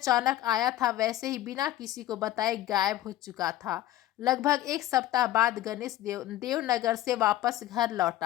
आया था वैसे ही बिना किसी को बताए गायब हो चुका था। लगभग 1 सप्ताह बाद गणेश देवनगर से वापस घर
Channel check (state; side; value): quieter; right; 14.4 dB